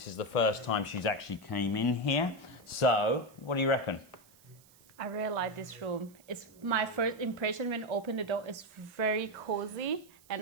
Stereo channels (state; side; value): noise; right; hiss, 27 dB below the sound